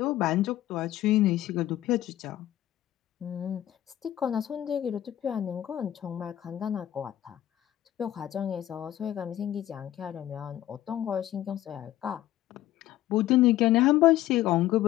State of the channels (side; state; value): right; quieter; 13.4 dB